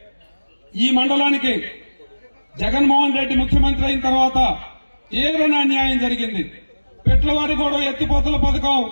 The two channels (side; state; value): both; inverted; correlation -1.00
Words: ఈ మండలానికి జగన్మోహన్ రెడ్డి ముఖ్యమంత్రి అయిన తర్వాత తీవ్రమైన అన్యాయం జరిగింది. పెట్లవారిగూడెం ఎత్తిపోతల పథకం